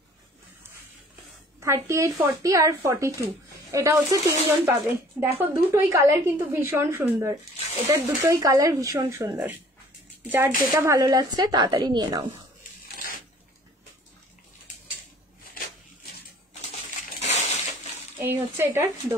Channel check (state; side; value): normal; both; correlation 0.53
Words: 38, 40 আর 42, এটা হচ্ছে তিনজন পাবে। দেখো দুটোই কালার কিন্তু ভীষণ সুন্দর, এটার দুটোই কালার ভীষণ সুন্দর। যার যেটা ভালো লাগছে তাড়াতাড়ি নিয়ে নাও। এই হচ্ছে এটার